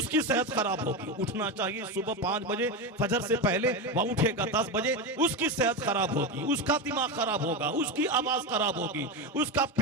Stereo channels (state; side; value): normal; both; correlation 0.16